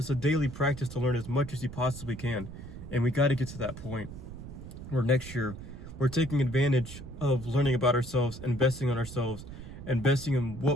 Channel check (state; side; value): noise; right; rumble, 12 dB below the sound